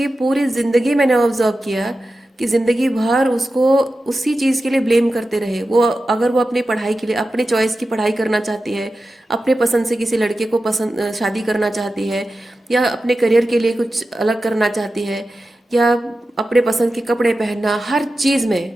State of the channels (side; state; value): both; normal; correlation 0.93